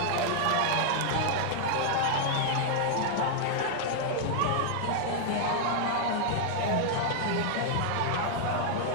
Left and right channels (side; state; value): both; different; correlation -0.01